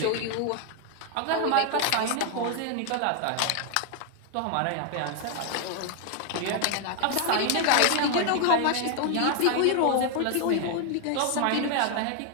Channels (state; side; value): different; both; correlation 0.00